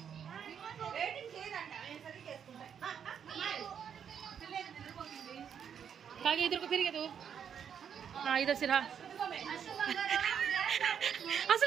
कागे इधर को फिर तू हाँ इधर से रहा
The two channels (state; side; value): quieter; left; 8.0 dB